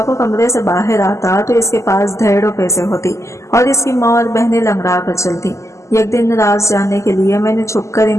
को कमरे से बाहर आता तो इसके पास ढेरों पैसे होती और इसकी माँ और बहनें लंगड़ा कर चलती। एक दिन राज जानने के लिए मैंने छुपकर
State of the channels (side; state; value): right; late; 0.14 ms